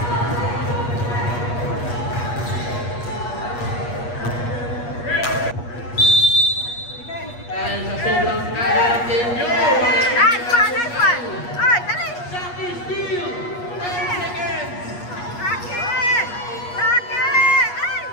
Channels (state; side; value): late; right; 8.4 ms